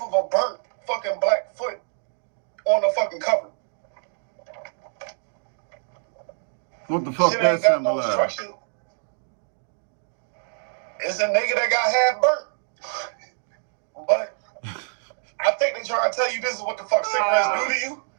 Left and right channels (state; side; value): silent; left; digital silence